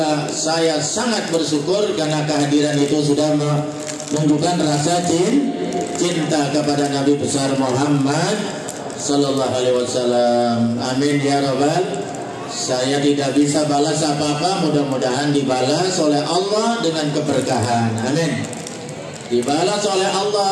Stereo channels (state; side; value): identical; both; correlation 1.00